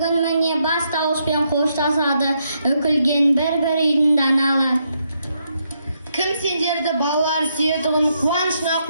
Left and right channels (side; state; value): both; inverted; correlation -0.78